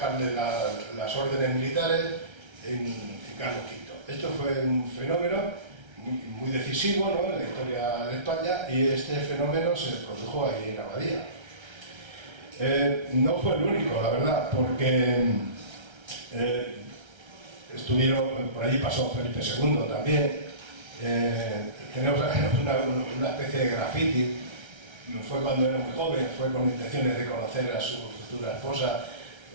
las órdenes militares, en Carlos V. Esto fue un fenómeno muy decisivo, ¿no?, en la historia de España, y este fenómeno se produjo ahí en Abadía. No fue el único, la verdad, porque por allí pasó Felipe II también. Tenemos una especie de graffiti. Fue cuando era muy joven, fue con intenciones de conocer a su futura esposa.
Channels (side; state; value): left; late; 1.3 ms